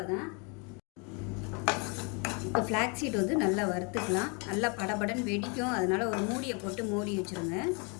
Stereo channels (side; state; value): right; quieter; 33.7 dB